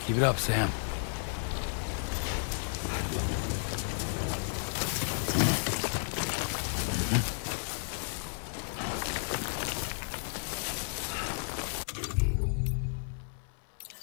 Keep it up, Sam.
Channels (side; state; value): right; silent; 56 dB below the other